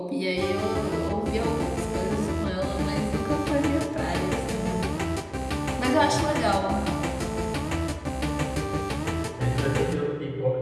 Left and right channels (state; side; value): identical; both; correlation 1.00